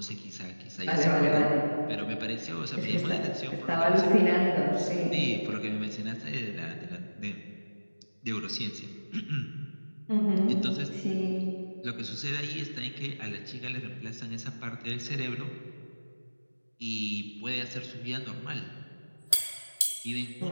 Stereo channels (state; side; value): inverted; both; correlation -1.00